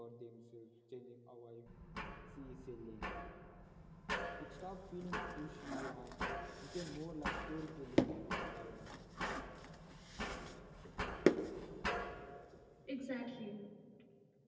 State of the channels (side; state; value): both; identical; correlation 1.00